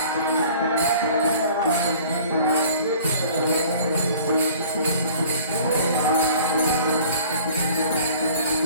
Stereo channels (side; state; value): both; inverted; correlation -0.49